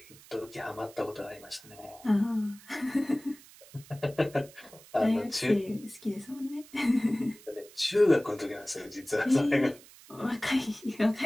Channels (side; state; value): right; noise; hiss, 22 dB below the sound